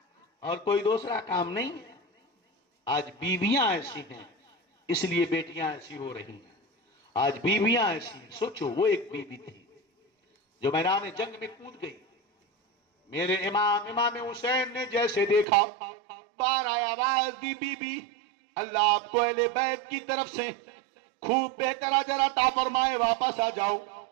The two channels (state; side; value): drops out; left; at 15.5 s